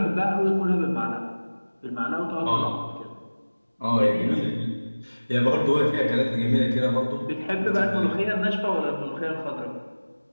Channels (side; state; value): both; inverted; correlation -1.00